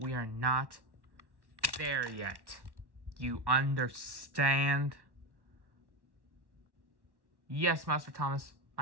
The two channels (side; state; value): left; late; 1.1 ms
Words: are not there yet. You understand? Yes, Master Thomas,